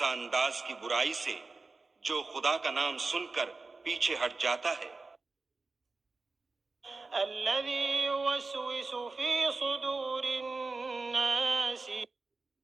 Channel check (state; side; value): quieter; left; 3.7 dB